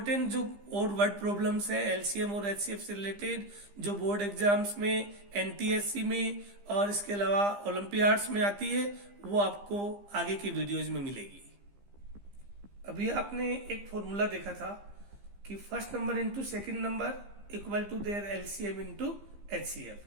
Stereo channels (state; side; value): late; left; 15 ms